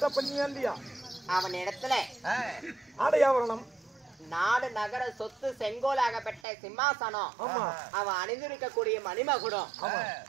பண்ணியா இல்லையா? அவன் இடத்துல ஆடையாவரணம் நாடு நகர சொத்து செங்கோலாகப்பட்ட சிம்மாசனம், அவன் அணிந்திருக்கக்கூடிய மணிமகுடம்,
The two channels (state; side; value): drops out; left; at 6.4 s